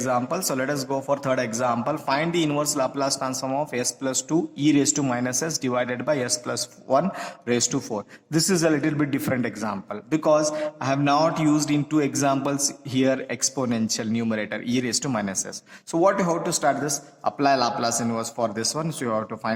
So let us go for third example. Find the inverse Laplace transform of s plus 2 e raised to minus s divided by s plus 1 raised to 4. This is a little bit different example because I have not used in two examples here exponential numerator e raised to minus s. So what you have to start this? Apply Laplace inverse for this one. So you have to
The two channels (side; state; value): both; identical; correlation 1.00